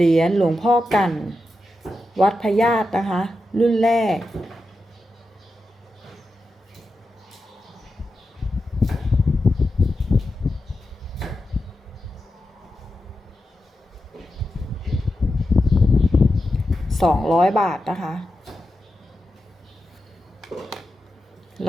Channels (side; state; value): both; normal; correlation 0.89